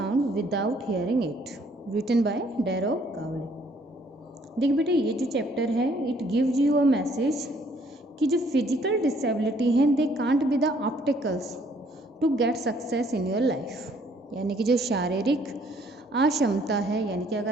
without hearing it, written by Darrow Cowley. देख बेटे ये जो chapter है it gives you a message कि जो physical disability हैं they can't be the obstacles to get success in your life, यानी कि जो शारीरिक अक्षमता है, यानी कि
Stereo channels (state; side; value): normal; both; correlation 0.63